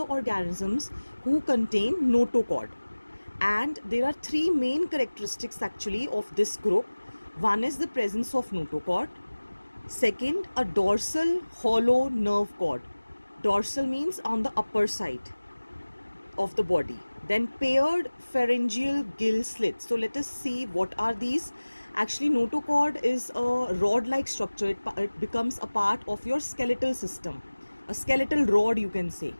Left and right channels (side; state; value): both; inverted; correlation -1.00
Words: organisms who contain notochord. And there are three main characteristics actually of this group. One is the presence of notochord. Second, a dorsal hollow nerve cord. Dorsal means on the upper side of the body. Then paired pharyngeal gill slits. So let us see what are these. Actually, notochord is a rod-like structure. It becomes a part of your skeletal system, a skeletal rod you can say.